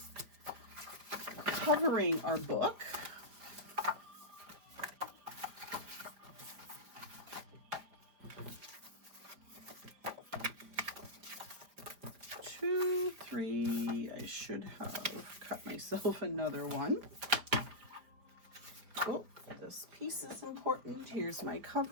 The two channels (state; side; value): late; left; 4.9 ms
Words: covering our book. Two, three, I should have cut myself another one. Oh, this piece is important. Here's my